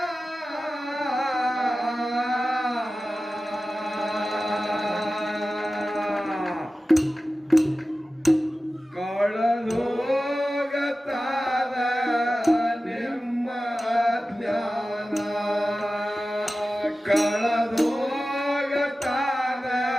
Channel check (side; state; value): both; normal; correlation 0.95